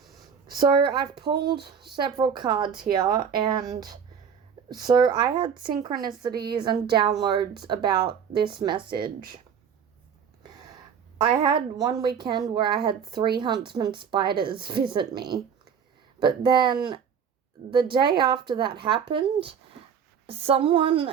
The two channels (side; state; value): left; quieter; 7.3 dB